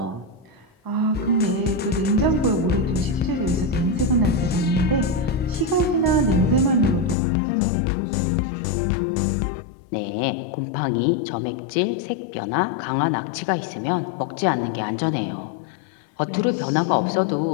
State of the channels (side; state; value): right; drops out; at 7.2 s